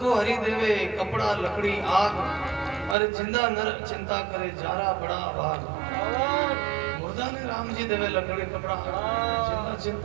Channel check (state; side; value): drops out; left; at 3.0 s